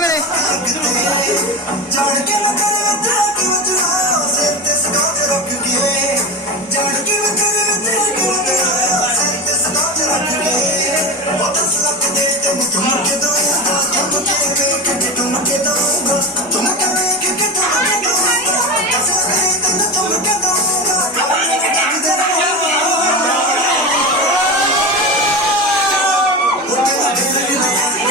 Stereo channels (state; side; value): normal; both; correlation 0.24